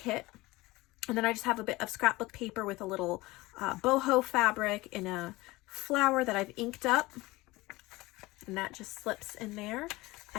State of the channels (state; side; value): quieter; right; 20.7 dB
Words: And then I just have a bit of scrapbook paper with a little boho fabric in a flower that I've inked up, and that just slips in there. I